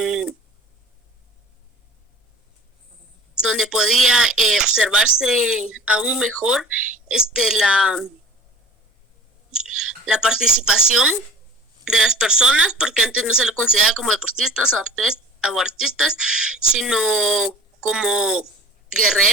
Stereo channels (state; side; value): normal; both; correlation 0.42